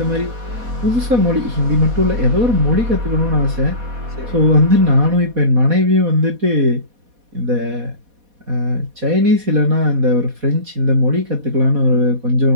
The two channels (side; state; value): left; late; 4.1 ms